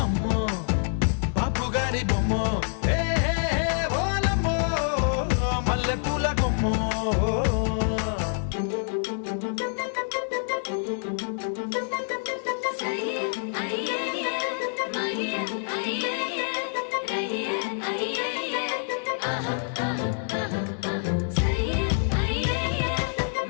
అమ్మో బాపు గారి బొమ్మో, ఓలమ్మో మల్లె పూల కొమ్మో.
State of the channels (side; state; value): right; silent; digital silence